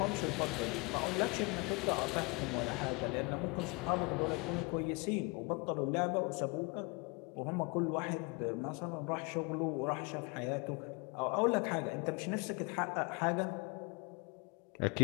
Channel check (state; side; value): quieter; right; 29.4 dB